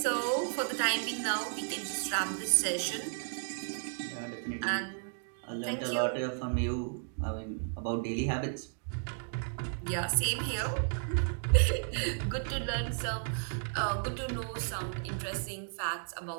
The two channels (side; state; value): left; silent; 55 dB below the other